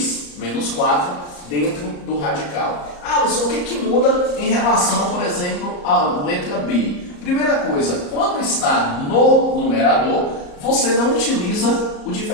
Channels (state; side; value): late; right; 34 ms